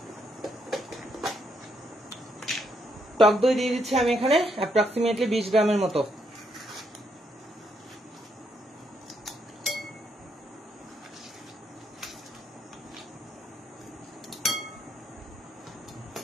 টক দই দিয়ে দিচ্ছি আমি এখানে অ্যাপ্রক্সিমেটলি 20 গ্রামের মতো।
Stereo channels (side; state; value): both; normal; correlation 0.76